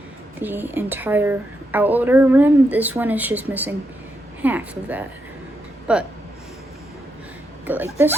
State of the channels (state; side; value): normal; both; correlation 0.82